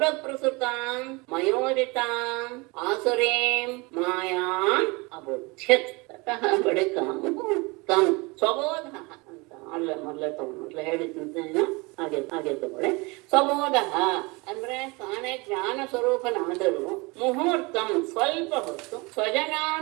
ಮಯೋದಿತಾಂ ಆಸುರೀಂ ಮಾಯಾಂ ಅಬುಧ್ಯತ್. ತತಃ ಬಳಿಕ ಮುಹೂರ್ತಂ ಸ್ವಬೋಧಃ ಅಂತ ಮೊದಲ ಹೇಳಿದ್ದೇನೆ, ಹಾಗೆ ತಗೊಳ್ಳಿ. ಸ್ವಬೋಧ ಅಂದ್ರೆ ತಾನೇ ಜ್ಞಾನ ಸ್ವರೂಪನಾದರೂ ಮುಹೂರ್ತಂ ಸ್ವಲ್ಪ ಹೊತ್ತು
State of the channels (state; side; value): quieter; left; 26.4 dB